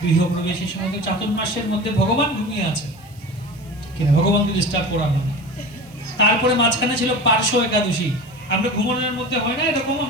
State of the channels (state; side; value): noise; right; hiss, 28 dB below the sound